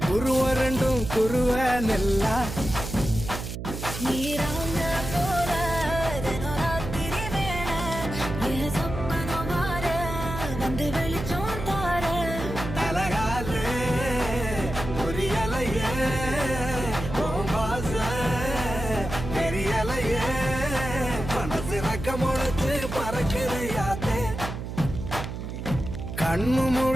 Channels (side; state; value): right; noise; hum, 7 dB below the sound